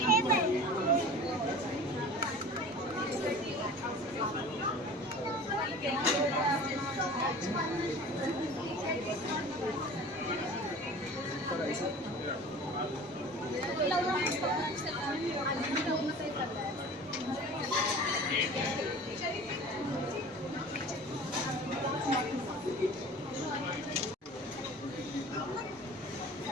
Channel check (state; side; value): normal; both; correlation 0.40